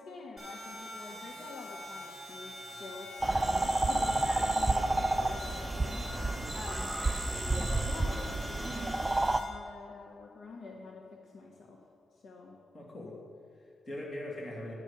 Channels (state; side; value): normal; both; correlation 0.95